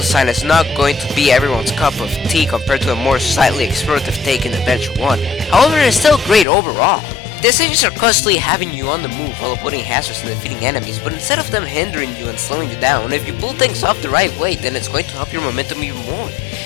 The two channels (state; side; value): drops out; right; at 6.5 s